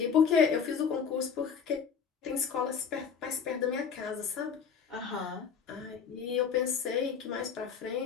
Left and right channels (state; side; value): quieter; right; 6.7 dB